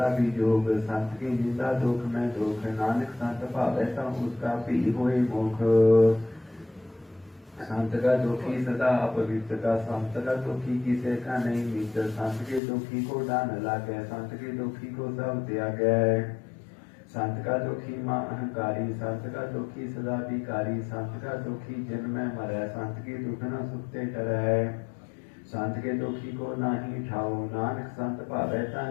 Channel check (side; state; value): right; drops out; at 12.6 s